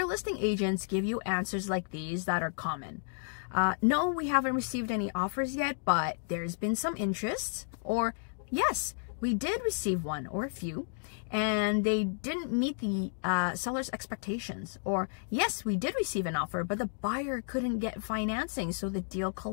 listing agents give you answers like these that are common. No, we haven't received any offers yet, but there's been some interest. Or, yes, we did receive one or a few, and they didn't meet the seller's expectations. Or, yes, we did receive an offer, but the buyer couldn't get financing, so the deal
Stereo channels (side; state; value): right; silent; digital silence